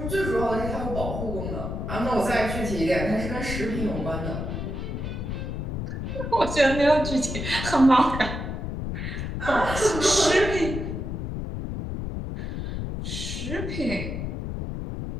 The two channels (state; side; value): noise; left; rumble, 4 dB below the sound